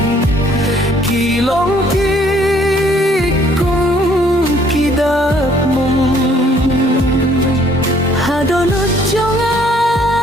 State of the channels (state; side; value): normal; both; correlation 0.62